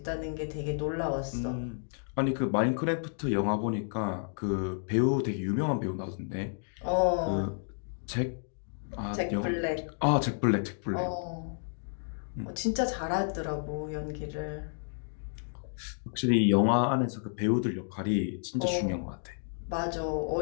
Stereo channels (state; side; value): silent; right; digital silence